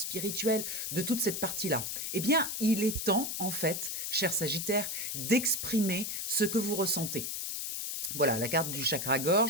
de toute cette partie-là. Eh bien, il est temps, en fait, cher Sagittaire, d'exprimer ce que vous ressentez. Voilà, la carte du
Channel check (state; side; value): noise; left; hiss, 3 dB below the sound